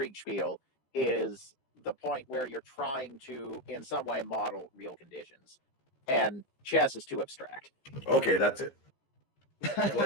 is the point where you're trying to, in some way, model real conditions. And chess is too abstract. Okay, that's it.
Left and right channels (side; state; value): right; late; 15 ms